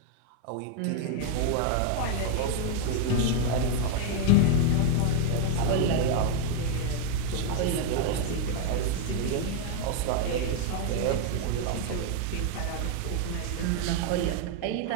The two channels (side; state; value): both; different; correlation 0.01